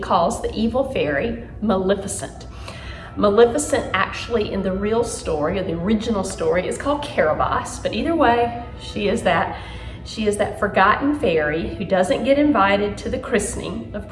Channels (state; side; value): identical; both; correlation 1.00